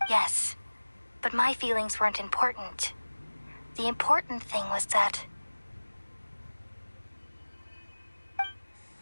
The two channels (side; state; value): both; inverted; correlation -1.00